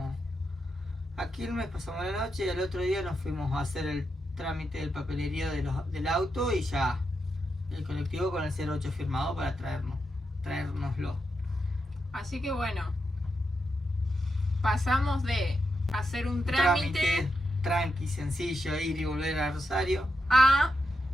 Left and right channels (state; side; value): normal; both; correlation 0.85